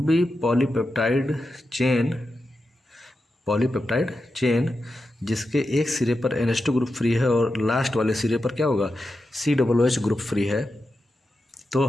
पॉलीपेप्टाइड चेन जिसके एक सिरे पर NH2 ग्रुप फ्री है और लास्ट वाले सिरे पर क्या होगा, COOH ग्रुप फ्री है। तो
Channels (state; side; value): normal; both; correlation 0.89